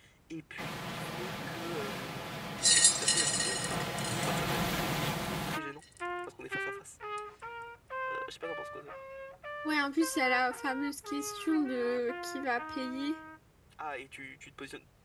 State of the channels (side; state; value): both; identical; correlation 1.00